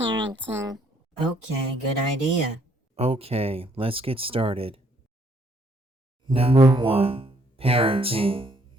Okay, good idea. Okay, let's get started. Number 1. Parenting.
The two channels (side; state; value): both; normal; correlation 0.66